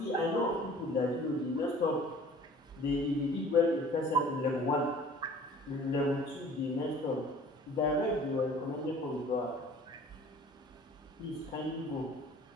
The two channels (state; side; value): normal; both; correlation 0.48